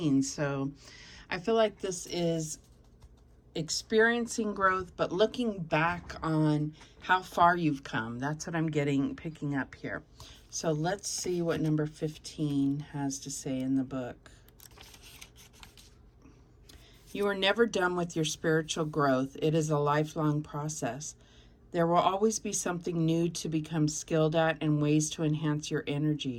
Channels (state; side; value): identical; both; correlation 1.00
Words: So I feel like this is experiencing growth, but looking back on how far you've come. That's what I'm picking up here. So let's see what number 15 has to say in the book. You are never done with your spiritual growth. It is a lifelong process. There will always be something new to become skilled at and ways to enhance your